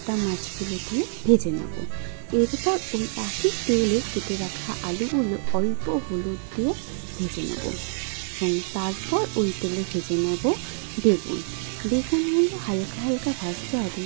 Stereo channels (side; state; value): left; silent; 61 dB below the other